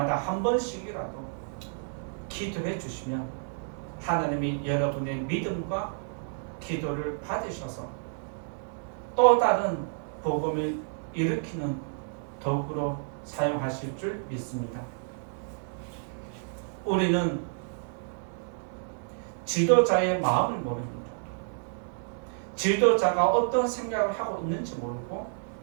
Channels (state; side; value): silent; left; 58 dB below the other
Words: 한 번씩이라도 기도해 주시면 하나님이 여러분의 믿음과 기도를 받으셔서 또 다른 복음을 일으키는 도구로 사용하실 줄 믿습니다. 우리는 지도자의 마음을 모릅니다. 지도자가 어떤 생각을 하고 있는지 모르고